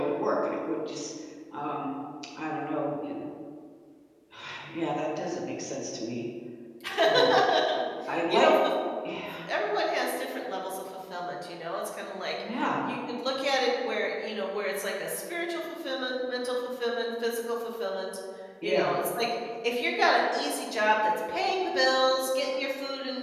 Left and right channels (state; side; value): identical; both; correlation 1.00